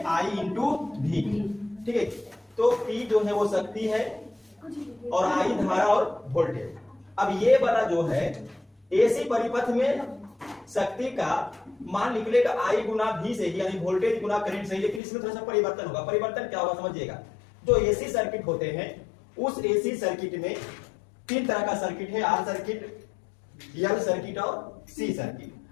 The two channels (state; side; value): drops out; right; at 15.0 s